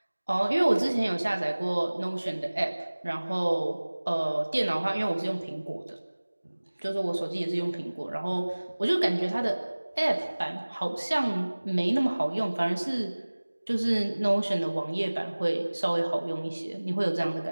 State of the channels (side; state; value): both; inverted; correlation -1.00